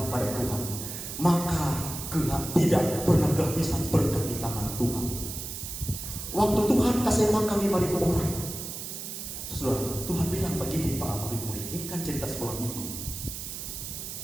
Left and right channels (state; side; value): noise; right; hiss, 7 dB below the sound